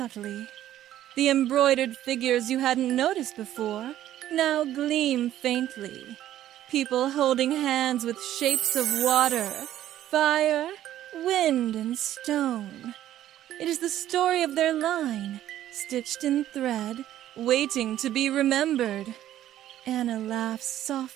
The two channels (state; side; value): quieter; left; 12.6 dB